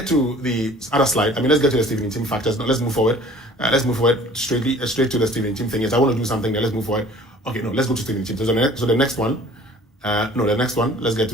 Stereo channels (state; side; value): normal; both; correlation 0.49